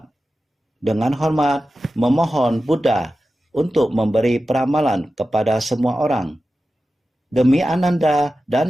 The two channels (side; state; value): both; normal; correlation 0.93